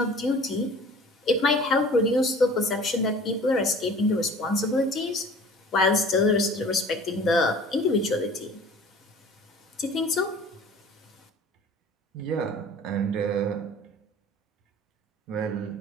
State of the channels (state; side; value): normal; both; correlation 0.45